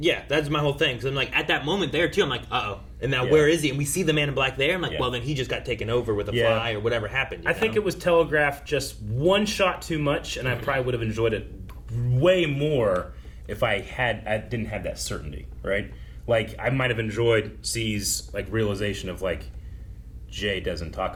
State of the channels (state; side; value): identical; both; correlation 1.00